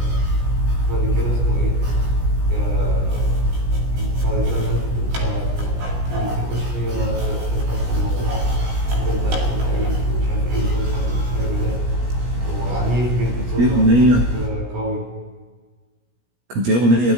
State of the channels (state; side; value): late; left; 17 ms